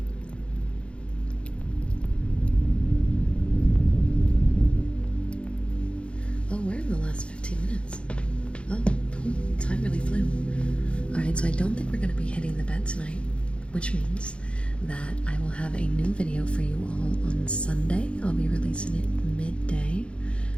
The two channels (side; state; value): right; late; 0.058 ms